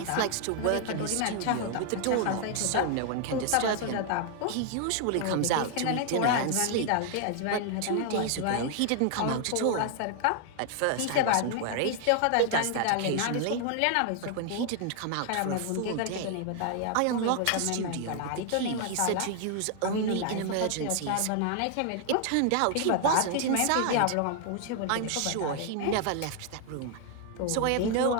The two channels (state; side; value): different; both; correlation 0.00